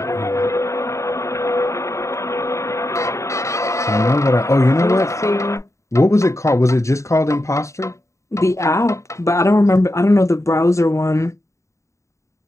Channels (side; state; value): right; late; 0.14 ms